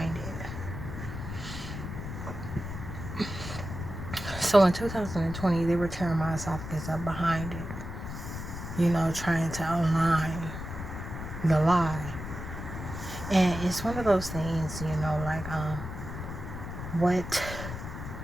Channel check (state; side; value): noise; left; rumble, 8 dB below the sound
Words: it. So in 2020, they were tearing my esophagus up behind it, trying to align the lie. And it's one of those things, like what